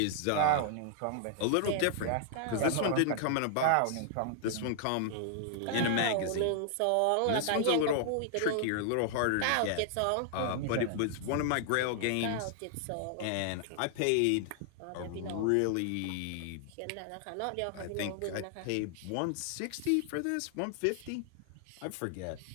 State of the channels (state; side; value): different; both; correlation 0.00